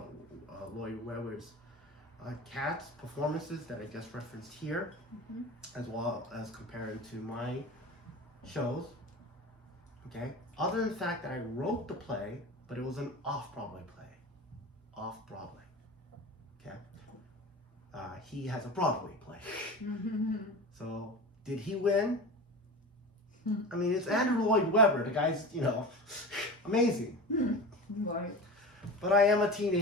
Webber's Cats performances that I just referenced here, as well as comparing to my shows. Okay. Other than the fact that I wrote the play, but it was an off-Broadway play. Off-Broadway. Okay. He has a Broadway play. So, did he win? I mean, it's Andrew Lloyd Webber. The guy's, amazing. Right. But I am a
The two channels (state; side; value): normal; both; correlation 0.31